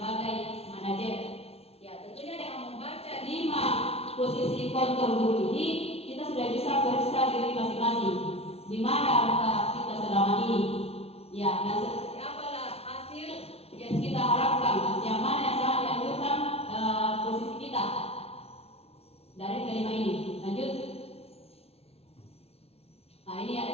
manajer. Ya, tentunya dengan membaca 5 posisi kontrol guru ini, kita sudah bisa periksa diri masing-masing. Di mana kita selama ini? Ya, dan seperti apalah hasil yang kita harapkan? Yang mana yang sangat dianjurkan posisi kita dari kelima ini? Lanjut. Nah, ini ada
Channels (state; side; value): late; right; 0.30 ms